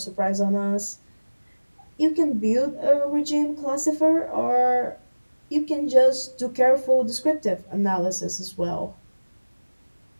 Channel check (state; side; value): inverted; both; correlation -1.00